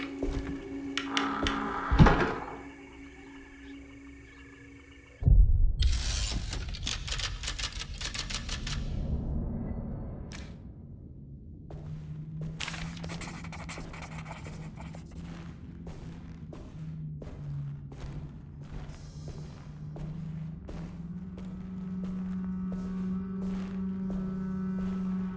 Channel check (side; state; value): both; identical; correlation 1.00